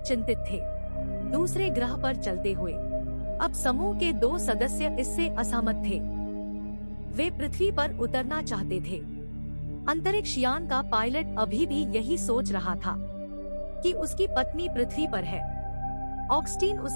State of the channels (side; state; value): both; inverted; correlation -1.00